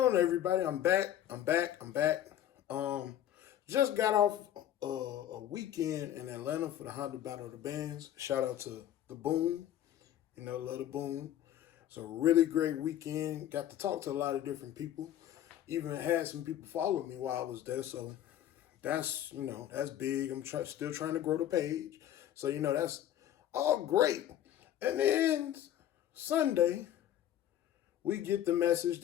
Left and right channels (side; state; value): right; quieter; 11.5 dB